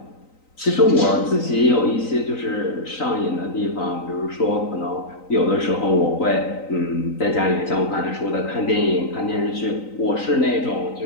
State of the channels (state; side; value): late; right; 3.9 ms